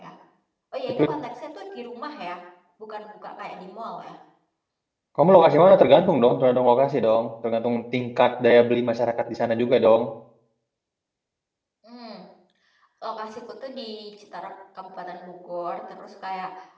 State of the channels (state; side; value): identical; both; correlation 1.00